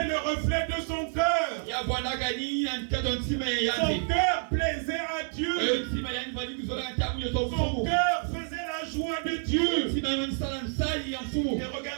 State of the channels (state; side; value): silent; left; 59 dB below the other